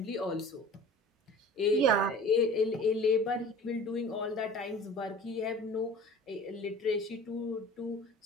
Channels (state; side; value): normal; both; correlation 0.42